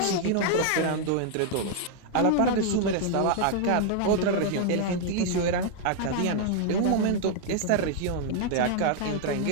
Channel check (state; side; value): different; both; correlation 0.00